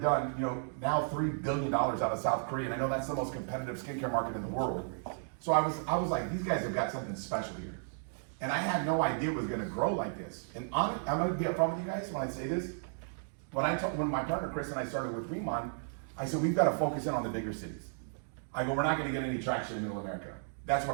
now $3 billion out of South Korea, and I know that's the most competitive skincare market in the world. So I was like, these guys have got something special here. And I had no idea it was gonna grow like this. And I'm gonna be upfront with you guys when I say this. When my partner Chris and I started with Riman, I said, we've got to focus in on the bigger cities. I go, we're not going to get any traction in Middle America. That's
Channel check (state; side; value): silent; left; digital silence